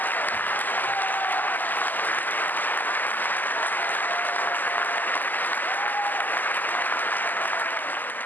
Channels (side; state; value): right; late; 0.086 ms